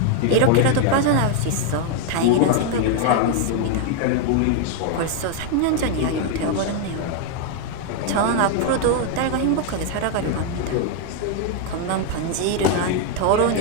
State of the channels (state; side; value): different; both; correlation 0.00